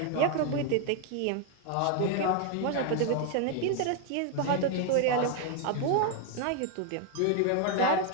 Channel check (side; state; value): both; different; correlation 0.00